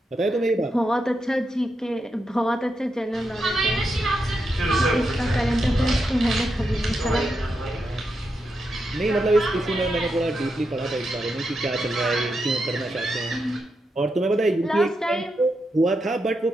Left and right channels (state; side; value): normal; both; correlation 0.85